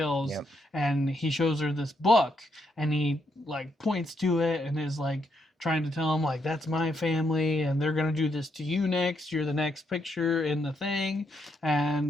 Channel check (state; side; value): normal; both; correlation 0.78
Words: Yep. And he shows her this book, and he like points to it and is like trying to tell him like, that's my family and they're gonna do this to you next. You're the next picture in the thing.